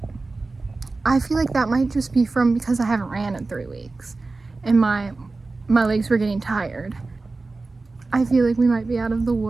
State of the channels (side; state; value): left; quieter; 3.6 dB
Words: I feel like that might just be from because I haven't ran in 3 weeks and my legs were getting tired. I feel like we might be out of the